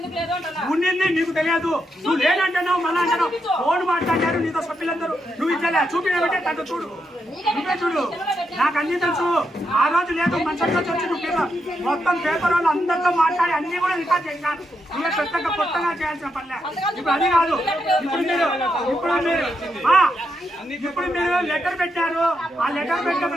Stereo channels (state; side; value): normal; both; correlation 0.82